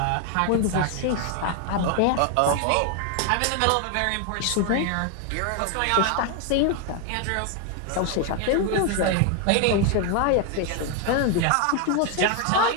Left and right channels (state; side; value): different; both; correlation 0.01